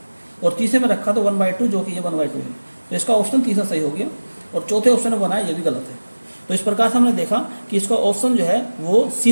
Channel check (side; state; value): both; inverted; correlation -1.00